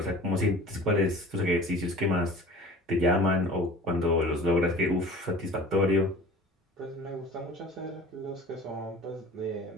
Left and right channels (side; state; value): both; normal; correlation 0.43